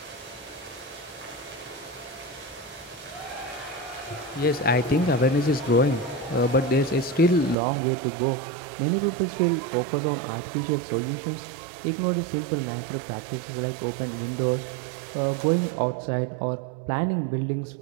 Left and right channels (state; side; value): drops out; left; at 7.6 s